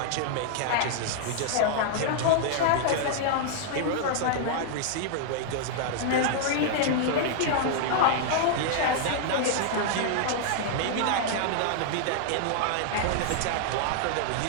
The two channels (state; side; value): different; both; correlation -0.01